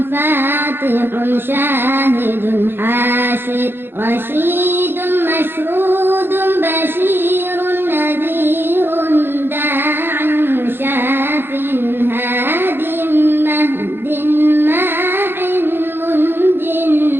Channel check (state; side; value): late; left; 0.10 ms